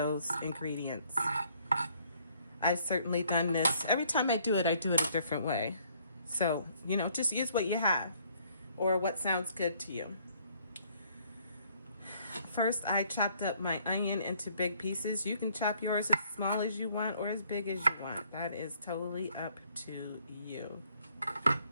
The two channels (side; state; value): both; inverted; correlation -0.64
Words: ingredients. I've certainly done this. Every time I do it a different way. So, you know, just use what you have or what sounds good to you. First, I chopped up my onion into big pieces. You can chop yours as small as you want or as big as you want. That is totally up to you.